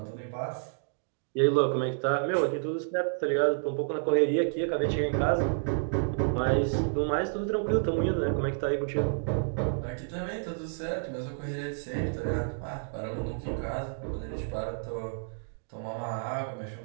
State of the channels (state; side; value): silent; left; digital silence